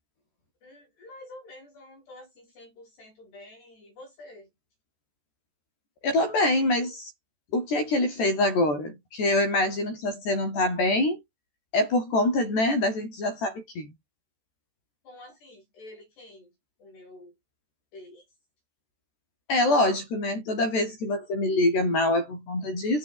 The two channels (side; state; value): right; late; 14 ms